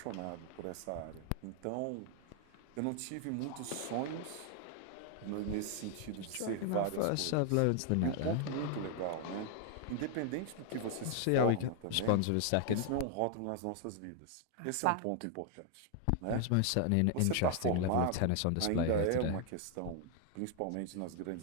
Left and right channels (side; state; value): both; different; correlation 0.00